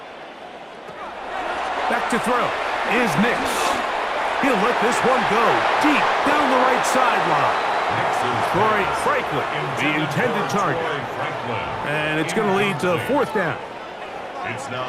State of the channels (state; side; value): identical; both; correlation 1.00